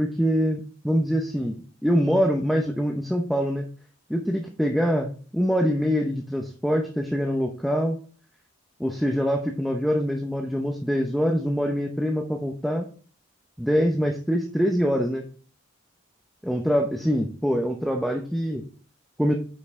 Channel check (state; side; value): normal; both; correlation 0.88